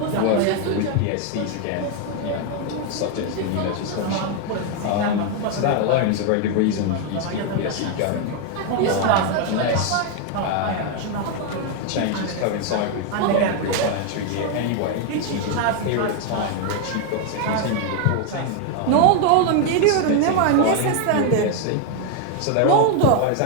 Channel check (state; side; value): different; both; correlation 0.01